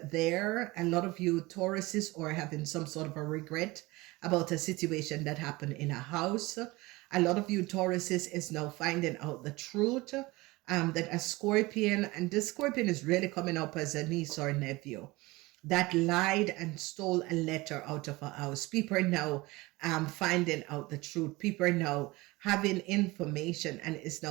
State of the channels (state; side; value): quieter; left; 21.7 dB